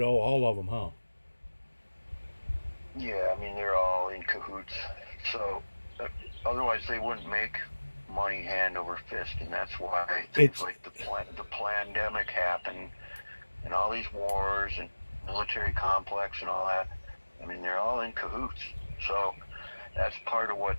all of them, huh? Yeah, I mean, they're all in cahoots. So otherwise they wouldn't make money hand over fist, and that's why things It's like the pandemic happened, and all these wars and military complex and all that. I mean, they're all in cahoots. So that's part of what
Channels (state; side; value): inverted; both; correlation -1.00